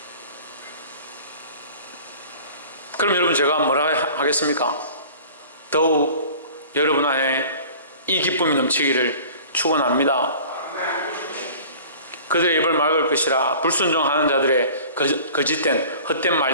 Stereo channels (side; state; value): both; inverted; correlation -0.44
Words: 그럼 여러분 제가 뭐라 하겠습니까? 더욱 여러분 안에 이 기쁨이 넘치기를 축원합니다. 그들의 입을 막을 것이라. 불순종하는 자들의 거짓된 헛된